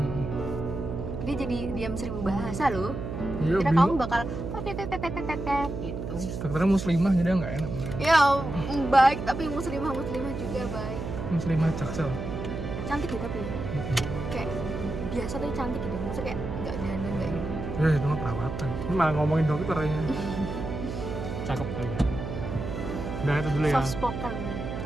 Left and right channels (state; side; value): noise; right; hum, 6 dB below the sound